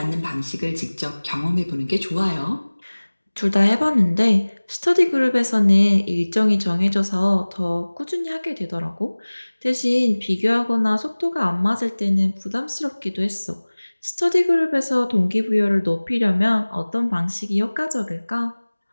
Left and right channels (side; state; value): both; inverted; correlation -1.00